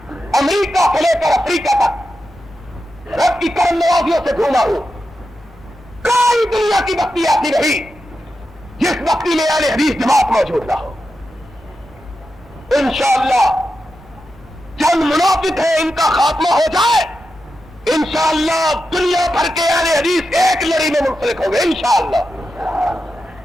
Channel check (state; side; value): normal; both; correlation 0.89